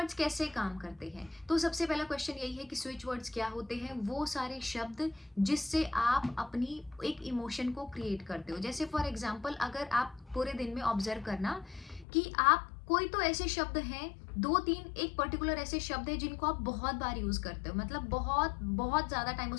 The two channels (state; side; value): drops out; right; at 12.1 s